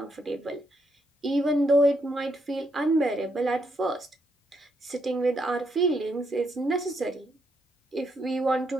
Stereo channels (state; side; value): normal; both; correlation 0.77